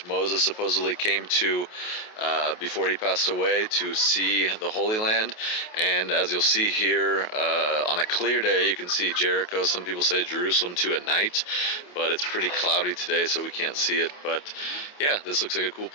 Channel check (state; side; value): late; right; 28 ms